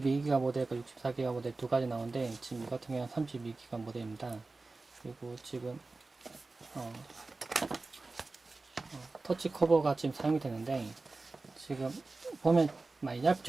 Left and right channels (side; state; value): left; quieter; 3.5 dB